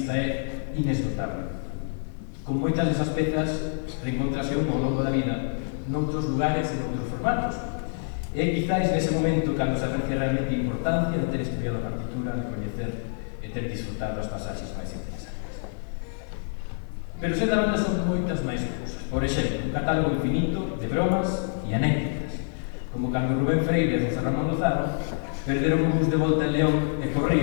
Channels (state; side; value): silent; right; 58 dB below the other